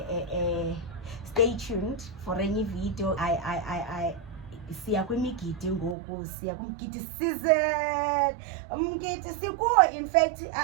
stay tuned for any video. I siya kwimigidi ngoku, siya kumgidi season, umgidi sikuwo. In fact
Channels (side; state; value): left; drops out; at 6.0 s